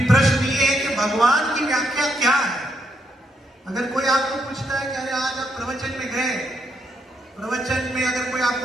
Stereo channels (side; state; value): both; normal; correlation 0.77